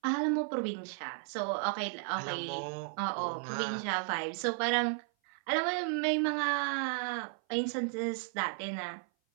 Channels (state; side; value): silent; left; 55 dB below the other